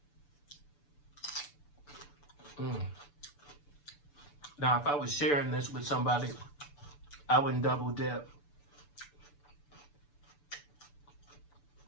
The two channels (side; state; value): right; late; 6.9 ms